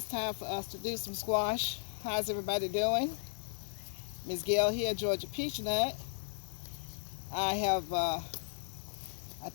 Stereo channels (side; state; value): right; silent; digital silence